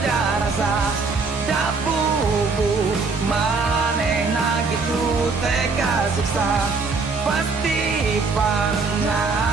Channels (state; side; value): quieter; left; 4.3 dB